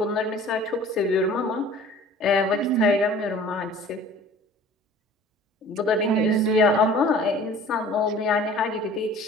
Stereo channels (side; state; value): both; normal; correlation 0.47